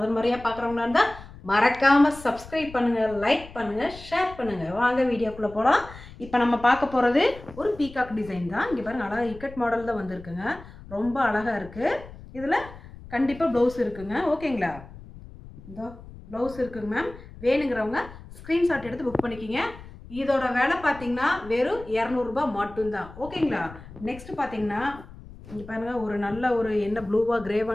முறையா பார்க்குறவங்களா இருந்தா மறக்காம சப்ஸ்கிரைப் பண்ணுங்க, லைக் பண்ணுங்க, ஷேர் பண்ணுங்க. வாங்க வீடியோக்குள்ள போலாம். இப்போ நம்ம பார்க்க போறது ஒரு பீகாக் டிசைன் தான். இங்க பாருங்க, அழகா இக்கட் மாடல் தான் வந்திருக்குங்க. ரொம்ப அழகா இருக்கு. இதுல கண்டிப்பா ப்ளவுஸ் இருக்குங்க. ஓகேங்களா? இதோ ப்ளவுஸ் இருக்குங்க மேம். வேணுங்கிறவங்க ஸ்க்ரீன்ஷாட் எடுத்து புக் பண்ணிக்கிங்க. இதோட விலை பார்த்தீங்கன்னா வெறும் 200 ரூபாய் மட்டும்தான். ஓகேங்களா? நெக்ஸ்ட் பார்த்தீங்கன்னா இங்கே பாருங்க, ஒரு நல்ல ஒரு என்ன ப்ளூவா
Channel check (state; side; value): noise; left; rumble, 17 dB below the sound